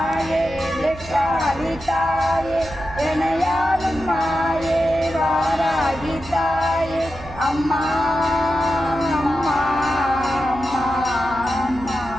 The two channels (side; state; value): right; noise; hum, 16 dB below the sound